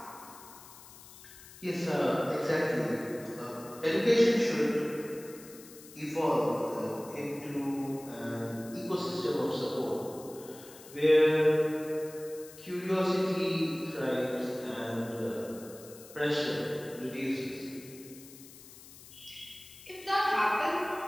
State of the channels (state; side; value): noise; left; hiss, 19 dB below the sound